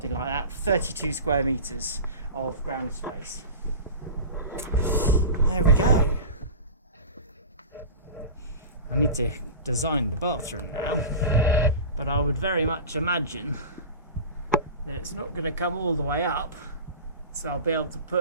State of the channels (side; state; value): both; inverted; correlation -0.31